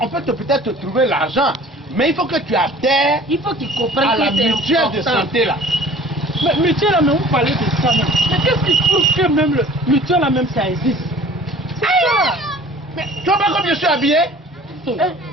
on peut peut-être te trouver l'argent, mais il faut que tu adhères à la mutuelle de santé là. Mais mutuelle là, mais vous parlez de ça même. Mais qu'est-ce qui prouve que même le mutuelle là même ça existe? C'est ça. Mais tu vois pas comme je suis habillé?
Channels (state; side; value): normal; both; correlation 0.47